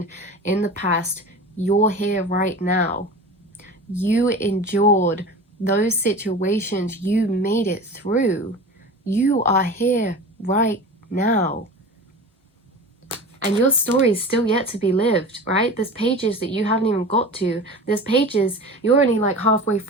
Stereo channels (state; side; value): normal; both; correlation 0.34